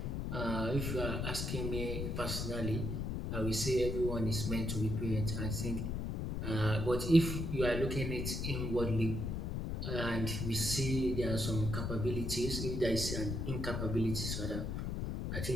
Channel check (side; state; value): left; noise; rumble, 2 dB below the sound